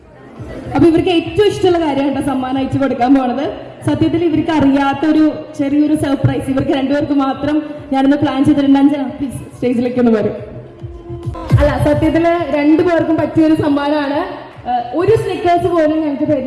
അപ്പൊ ഇവർക്ക് ഏറ്റവും ഇഷ്ടമുള്ള കാര്യമാണ് സമ്മാനം അയച്ചു കൊടുക്കാൻ പോണത്. സത്യത്തിൽ ഇവർക്ക് അറിയാത്തൊരു ചെറിയൊരു സർപ്രൈസ് ഇവർക്ക് രണ്ടുപേർക്ക് മാത്രം ഞാനൊന്ന് പ്ലാൻ ചെയ്തിട്ടുണ്ട്. അഞ്ജന പ്ലീസ് സ്റ്റേജിലേക്ക് ഒന്ന് വരും. അല്ല സത്യത്തില് രണ്ടുപേർക്കും പറ്റിയൊരു സമ്മാനമാണ്. ഒരു സ്നിക്കേഴ്സ് പോലും ഞങ്ങൾക്ക്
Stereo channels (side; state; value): both; identical; correlation 1.00